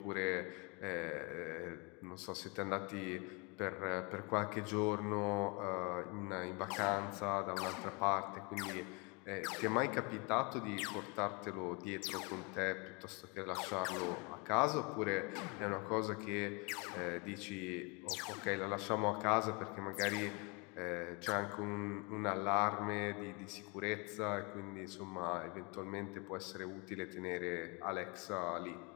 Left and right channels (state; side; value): quieter; right; 30.6 dB